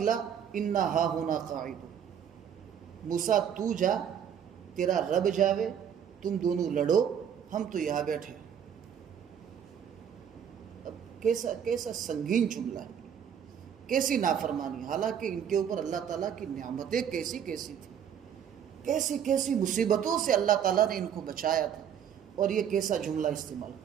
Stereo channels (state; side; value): quieter; left; 8.5 dB